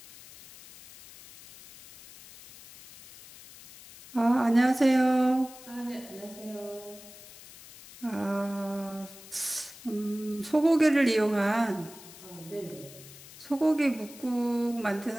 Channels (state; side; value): noise; left; hiss, 18 dB below the sound